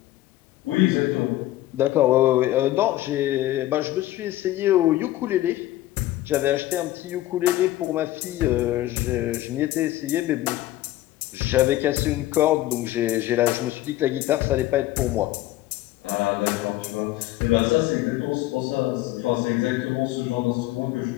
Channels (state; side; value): quieter; right; 15.5 dB